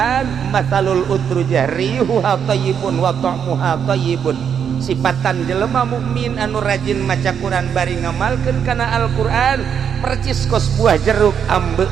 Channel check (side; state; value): left; quieter; 7.8 dB